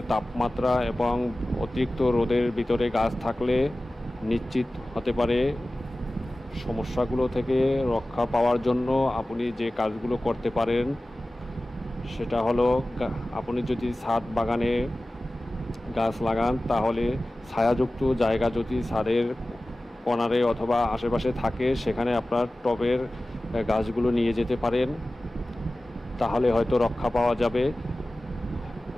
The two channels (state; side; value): normal; both; correlation 0.96